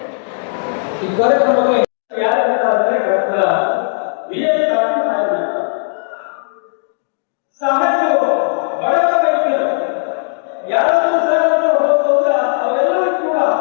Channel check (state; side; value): silent; right; 68 dB below the other